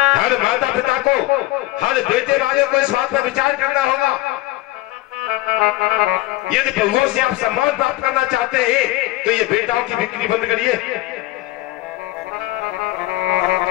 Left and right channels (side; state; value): right; quieter; 17.9 dB